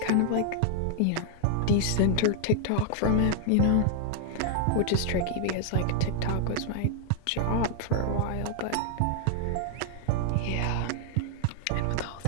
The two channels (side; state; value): both; different; correlation 0.00